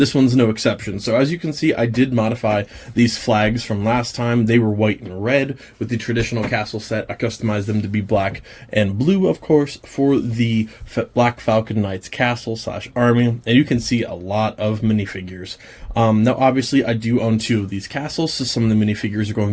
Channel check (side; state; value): both; identical; correlation 1.00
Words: one's no exception. So as you can see, I did modify these flags from last time. They were white and red with the traditional castle set. I customized them to be black and blue, of course, for the Black Falcon Knights castle / army. And you can see a lot of minifigures. Now, obviously, I do own 2 of these castles, so some of the minifigures are going